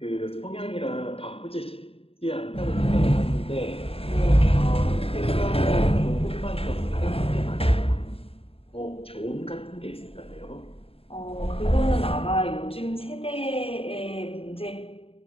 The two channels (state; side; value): late; right; 0.27 ms